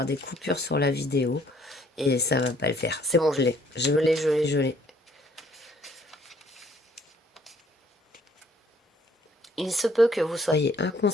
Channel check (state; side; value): normal; both; correlation 0.62